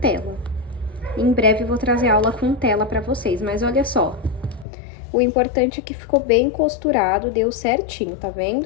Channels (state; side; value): drops out; right; at 4.7 s